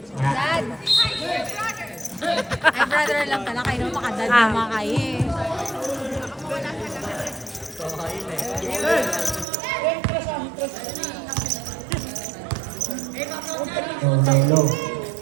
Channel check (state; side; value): drops out; left; at 9.5 s